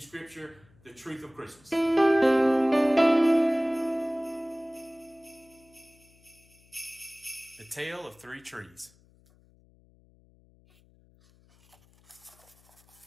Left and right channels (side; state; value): left; noise; hum, 30 dB below the sound